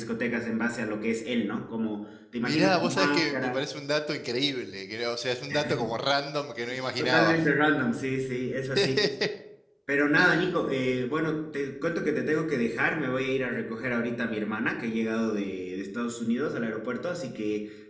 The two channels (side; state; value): both; identical; correlation 1.00